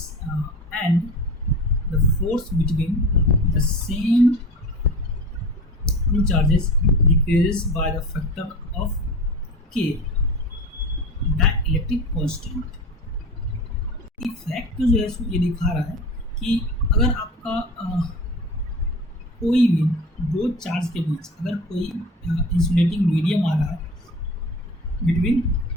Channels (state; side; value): normal; both; correlation 0.34